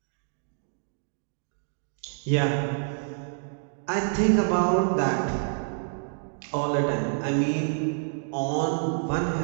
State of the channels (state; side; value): silent; left; digital silence